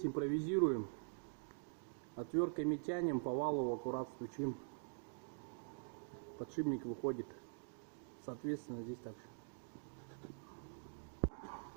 импровизируем, отвертками тянем, по валу аккурат стучим, подшипник выходит, соответственно здесь также.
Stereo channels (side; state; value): left; silent; digital silence